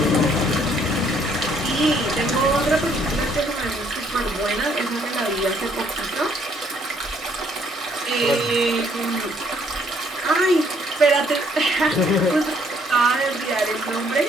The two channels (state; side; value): normal; both; correlation 0.66